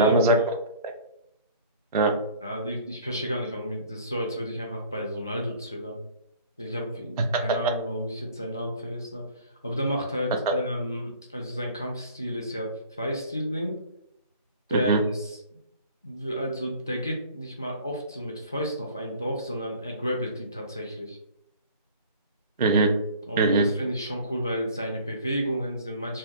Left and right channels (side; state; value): both; inverted; correlation -0.48